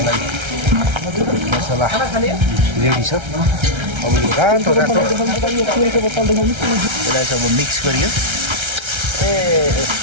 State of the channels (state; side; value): late; left; 1.3 ms